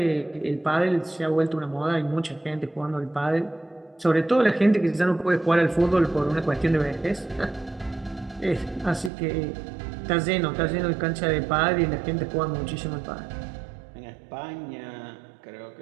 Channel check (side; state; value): left; drops out; at 9.1 s